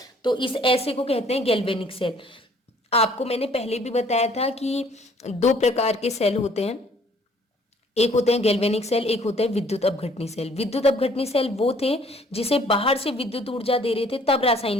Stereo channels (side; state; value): both; normal; correlation 0.59